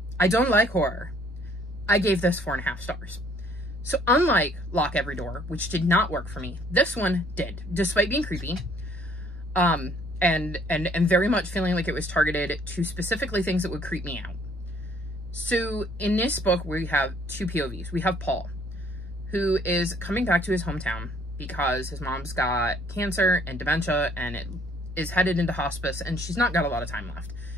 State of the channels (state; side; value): noise; right; rumble, 21 dB below the sound